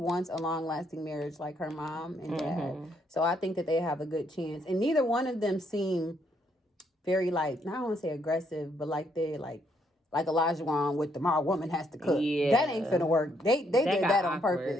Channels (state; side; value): normal; both; correlation 0.72